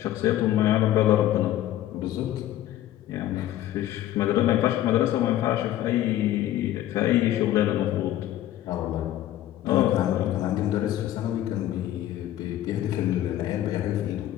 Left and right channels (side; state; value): right; quieter; 13.2 dB